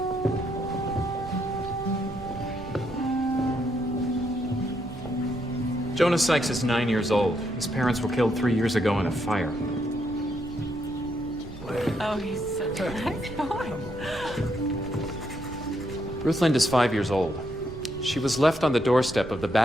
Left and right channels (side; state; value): right; noise; rumble, 15 dB below the sound